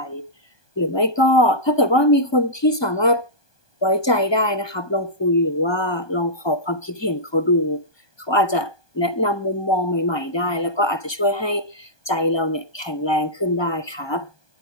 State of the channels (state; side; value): late; right; 1.2 ms